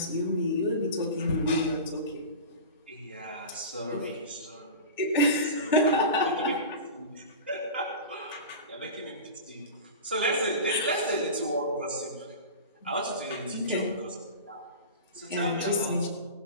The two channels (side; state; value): both; inverted; correlation -0.31